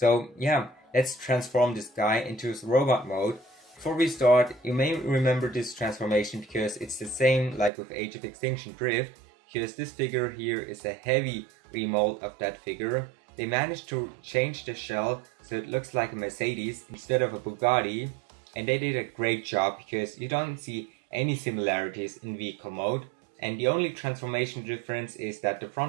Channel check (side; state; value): left; drops out; at 7.7 s